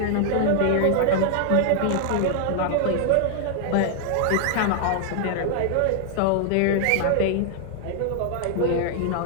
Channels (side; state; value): both; different; correlation 0.00